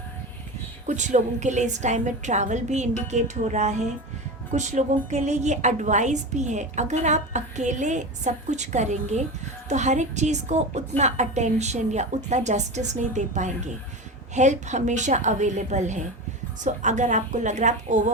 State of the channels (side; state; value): both; normal; correlation 0.25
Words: कुछ लोगों के लिए इस टाइम में ट्रैवल भी इंडिकेट हो रहा है। कुछ लोगों के लिए ये एडवाइस भी है, अगर आप अकेले सब कुछ करेंगे तो हर एक चीज़ को उतना अटेंशन या उतना जस्टिस नहीं दे पाएंगे। हेल्प हमेशा अवेलेबल है। सो अगर आपको लग रहा है आप